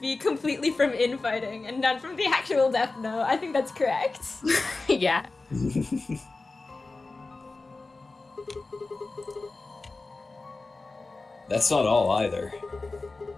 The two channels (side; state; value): right; quieter; 3.5 dB